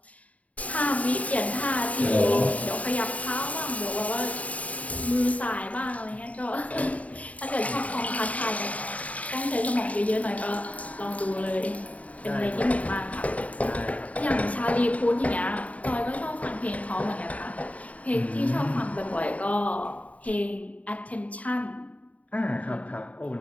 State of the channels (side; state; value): right; late; 0.069 ms